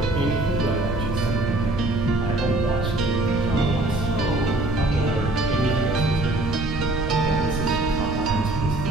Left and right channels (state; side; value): noise; right; rumble, 6 dB below the sound